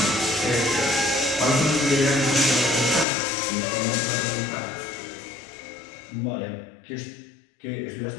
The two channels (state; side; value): drops out; right; at 3.1 s